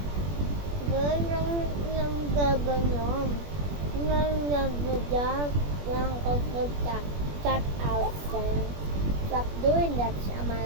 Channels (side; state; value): left; late; 21 ms